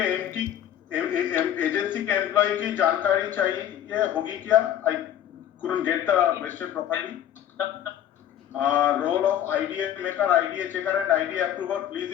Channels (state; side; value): quieter; right; 10.7 dB